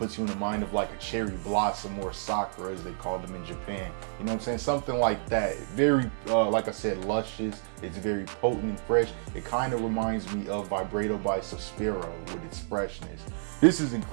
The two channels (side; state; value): left; silent; digital silence